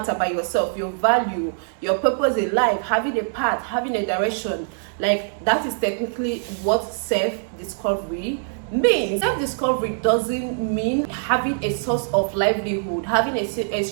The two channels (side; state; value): left; silent; digital silence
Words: about yourself, your value, your purpose in life, having a path, having a direction. Like, that is technically what self-discovery means. Self-discovery doesn't mean having a source of livelihood, having a